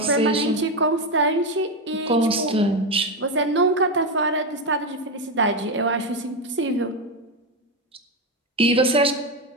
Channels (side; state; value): both; normal; correlation 0.10